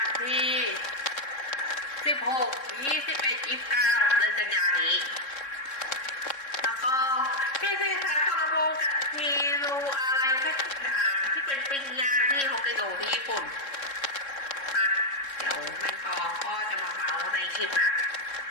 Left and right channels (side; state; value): right; late; 3.7 ms